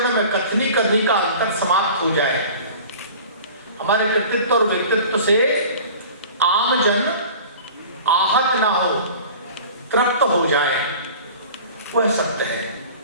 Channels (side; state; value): both; inverted; correlation -0.42